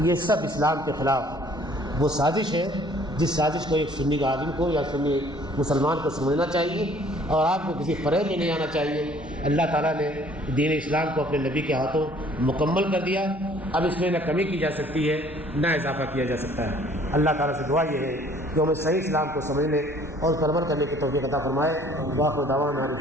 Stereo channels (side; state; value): both; normal; correlation 0.56